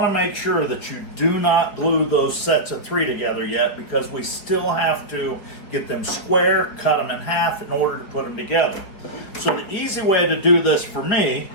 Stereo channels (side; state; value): right; late; 4.8 ms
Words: to make sure that you do not glue those sets of 3 together yet, because we still have to get them square, cut them in half in order to put them together. So the easy way to do this for me